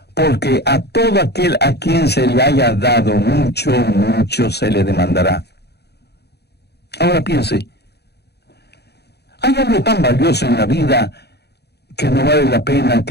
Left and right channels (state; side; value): late; right; 0.48 ms